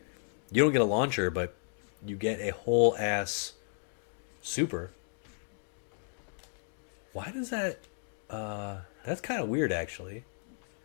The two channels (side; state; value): right; silent; digital silence